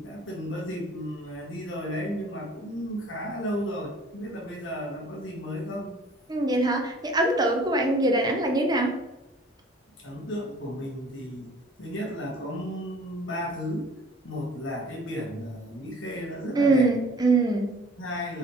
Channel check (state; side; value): normal; both; correlation 0.50